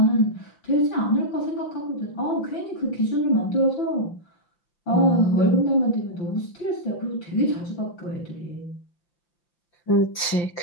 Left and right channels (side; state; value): right; late; 5.7 ms